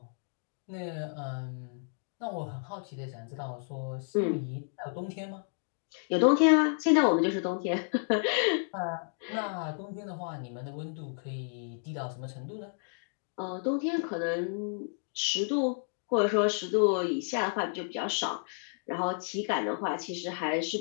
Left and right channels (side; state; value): right; silent; digital silence